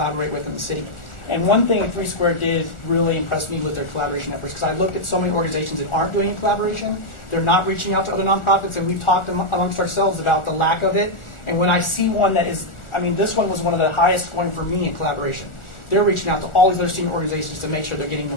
with in the city. And one thing Three Square did really impress me with their collaboration efforts, because I looked at so many organizations that aren't doing collaboration. They're not reaching out to other nonprofits, and we've talked amongst ourselves about the lack of it. And when I see one that is, I mean, this one was one of the highest scoring for me in collaboration. They're reaching out to all these other student organizations to make sure they're getting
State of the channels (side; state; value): right; late; 1.4 ms